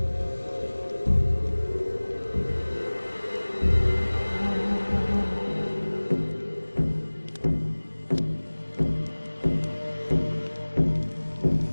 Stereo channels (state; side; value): inverted; both; correlation -1.00